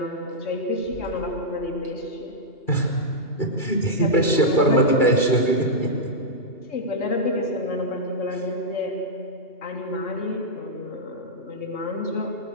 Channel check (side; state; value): right; late; 2.4 ms